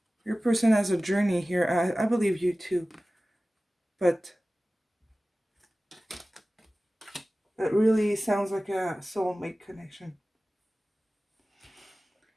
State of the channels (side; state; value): both; normal; correlation 0.97